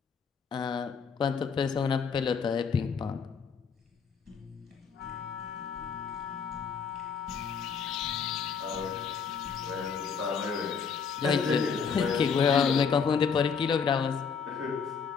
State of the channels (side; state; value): right; quieter; 6.2 dB